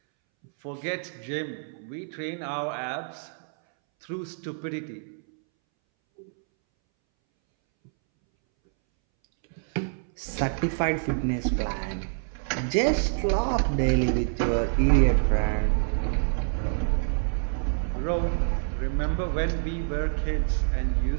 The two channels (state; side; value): silent; left; 60 dB below the other